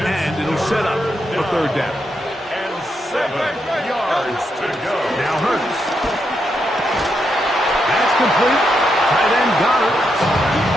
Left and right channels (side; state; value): both; normal; correlation 0.82